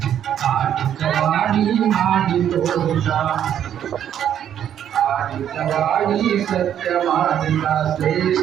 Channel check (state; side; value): quieter; left; 9.9 dB